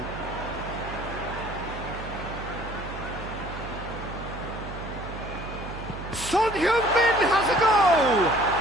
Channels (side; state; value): right; noise; hum, 10 dB below the sound